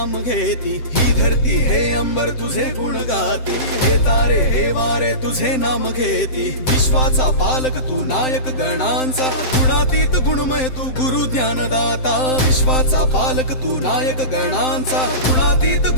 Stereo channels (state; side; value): late; right; 7.7 ms